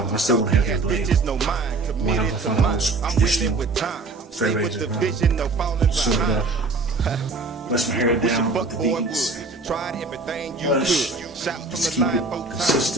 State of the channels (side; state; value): left; quieter; 3.7 dB